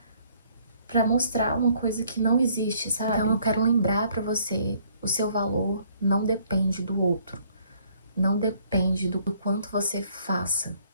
para mostrar uma coisa que não existe, sabe? Então eu quero lembrar para você, o seu valor não depende do outro. Não depende do quanto você faça.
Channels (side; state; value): both; inverted; correlation -0.63